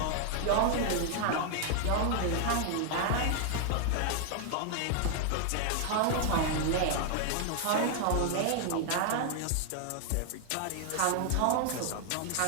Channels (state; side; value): different; both; correlation 0.00